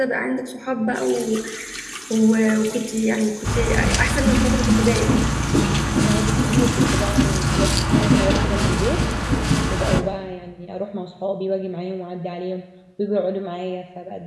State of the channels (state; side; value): identical; both; correlation 1.00